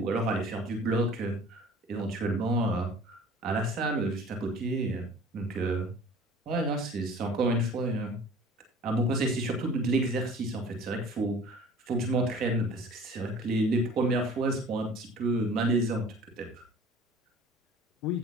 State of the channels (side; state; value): both; normal; correlation 0.46